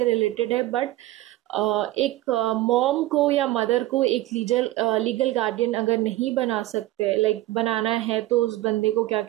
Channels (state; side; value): quieter; left; 16.7 dB